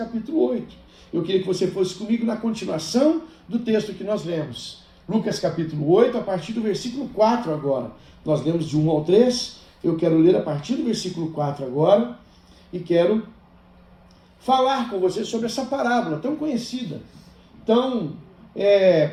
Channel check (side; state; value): both; identical; correlation 1.00